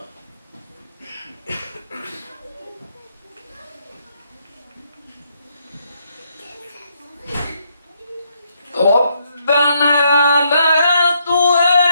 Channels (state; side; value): inverted; both; correlation -0.75